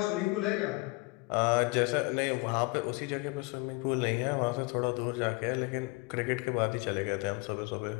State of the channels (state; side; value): quieter; right; 26.6 dB